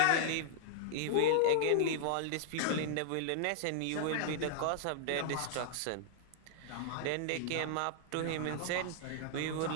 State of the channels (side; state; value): both; different; correlation -0.01